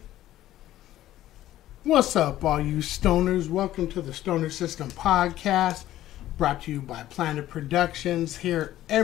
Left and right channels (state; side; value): quieter; right; 13.8 dB